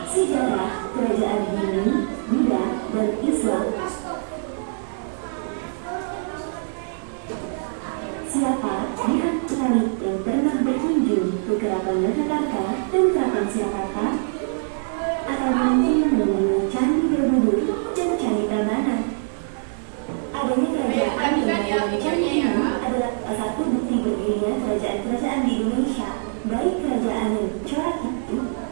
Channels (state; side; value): silent; left; digital silence